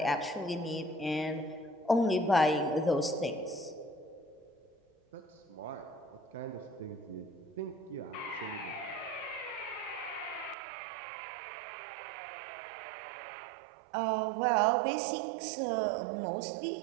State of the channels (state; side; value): drops out; left; at 10.6 s